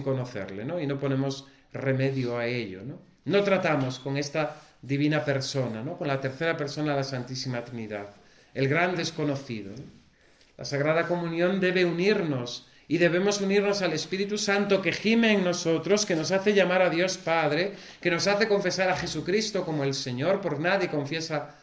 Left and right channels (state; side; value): identical; both; correlation 1.00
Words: conocerle, ¿no? Y no ponemos remedio a ello, ¿no? No tratamos con esta divina persona, ¿no? Con la tercera persona de la Santísima Trinidad, el gran desconocido, ¿no? La Sagrada Comunión debe unirnos y debemos unirnos al Espíritu Santo que gime en nosotros, que nos hace llamar a Dios Padre, que nos hace confesar a Jesucristo como el Señor. Por nadie confiesa